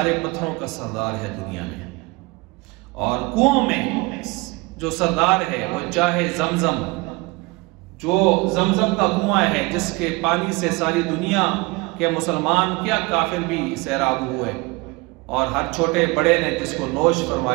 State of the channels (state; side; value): quieter; left; 24.5 dB